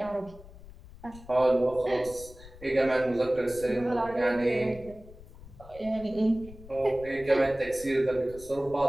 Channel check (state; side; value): noise; left; rumble, 18 dB below the sound